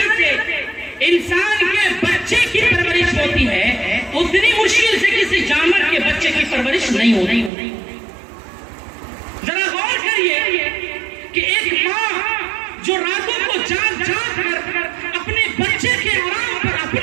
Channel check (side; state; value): left; drops out; at 7.5 s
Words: سے انسان کے بچے کی پرورش ہوتی ہے، اتنی مشکل سے کسی جانور کے بچے کی پرورش نہیں ہوتی۔ ذرا غور کریے کہ ایک ماں جو راتوں کو جاگ جاگ کر اپنے بچے کے آرام پر